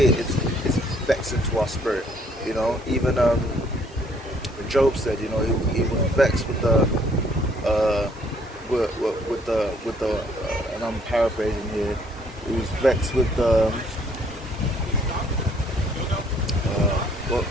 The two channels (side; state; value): both; normal; correlation 0.63